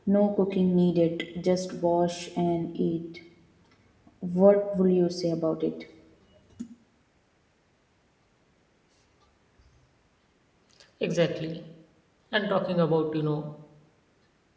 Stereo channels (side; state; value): both; identical; correlation 1.00